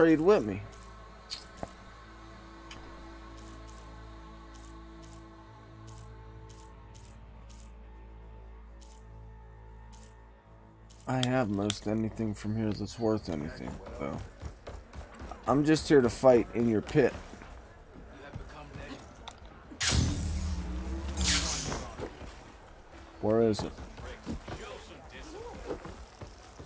with me. I have most anything from here that's worth anything, though. I'm just here to fight in your pit. Where is it?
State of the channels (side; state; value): both; identical; correlation 1.00